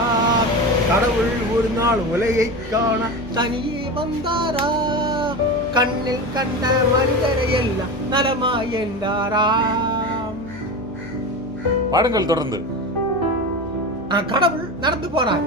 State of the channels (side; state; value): left; noise; hum, 18 dB below the sound